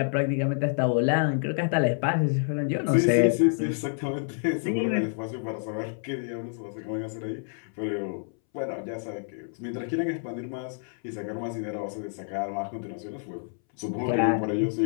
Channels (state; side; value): silent; right; 59 dB below the other